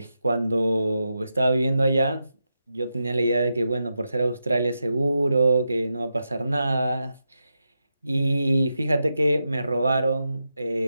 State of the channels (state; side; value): inverted; both; correlation -0.87